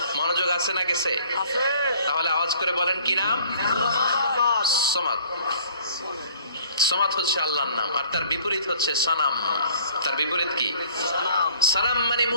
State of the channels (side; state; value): both; inverted; correlation -0.54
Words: মনোযোগ আছে না গেছে? আছে তাহলে আওয়াজ করে বলেন কি নাম? সামাদ। সামাদ হচ্ছে আল্লাহর নাম, আর তার বিপরীত হচ্ছে সানাম। তার বিপরীত কি? সানাম মানে